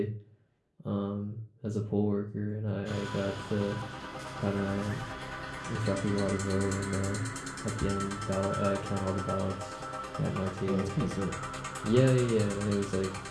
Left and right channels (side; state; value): both; identical; correlation 1.00